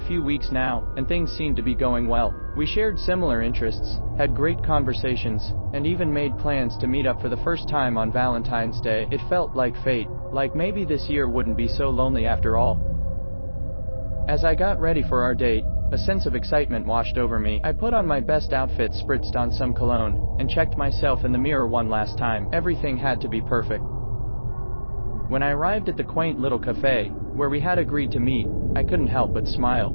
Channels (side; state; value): both; inverted; correlation -1.00